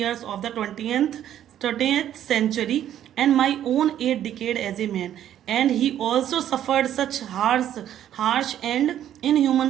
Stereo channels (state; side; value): quieter; left; 11.0 dB